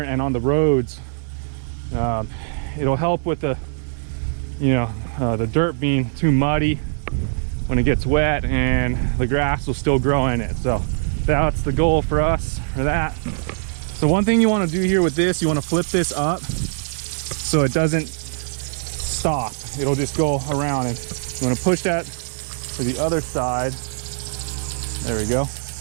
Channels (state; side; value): silent; left; digital silence